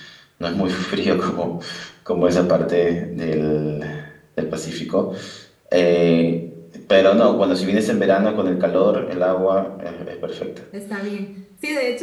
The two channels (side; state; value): both; identical; correlation 1.00